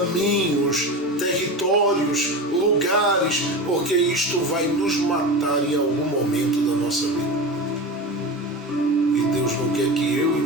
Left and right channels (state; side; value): normal; both; correlation 0.26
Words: territórios, lugares, porque isto vai nos matar em algum momento da nossa vida. E Deus não quer que eu e